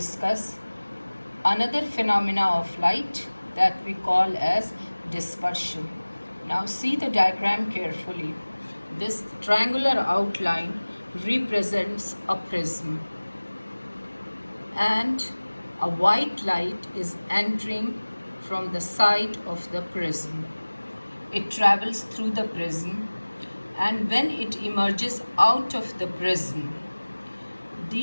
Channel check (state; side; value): inverted; both; correlation -1.00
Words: another phenomena of light that we call as dispersion. Now see the diagram carefully. This triangular outline represents a prism and a white light is entering from the side of the prism. It travels through the prism, and when it emerges out of the prism,